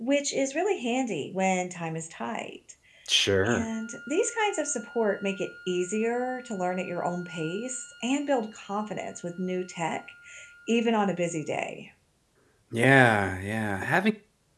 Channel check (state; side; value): identical; both; correlation 1.00